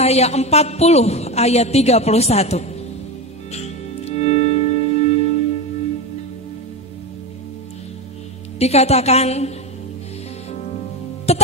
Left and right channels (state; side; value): normal; both; correlation 0.18